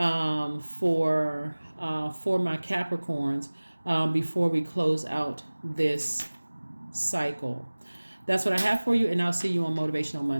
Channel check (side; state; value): both; inverted; correlation -1.00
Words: my Capricorns before we close out this cycle. That's what I have for you, and I'll see you on Motivational